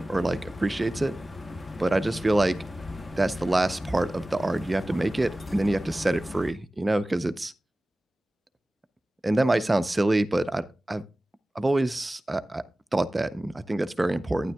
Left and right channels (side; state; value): both; normal; correlation 0.97